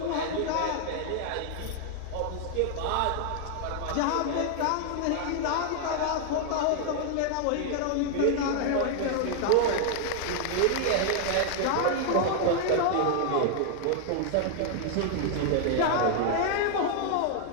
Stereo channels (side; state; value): both; different; correlation 0.00